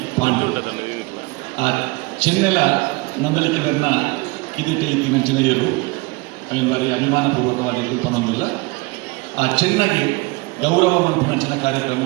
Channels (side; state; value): left; quieter; 25.1 dB